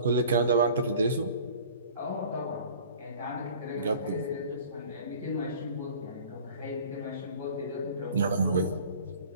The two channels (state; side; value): inverted; both; correlation -0.46